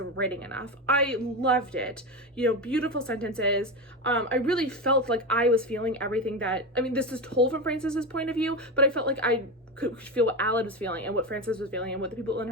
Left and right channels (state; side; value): normal; both; correlation 0.18